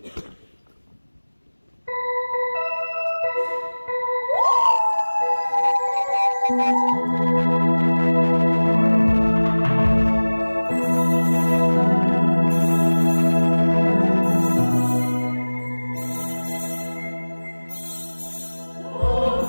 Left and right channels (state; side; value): inverted; both; correlation -1.00